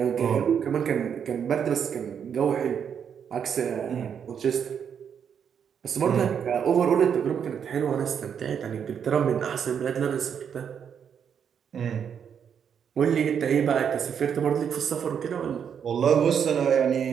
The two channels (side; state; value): left; quieter; 7.7 dB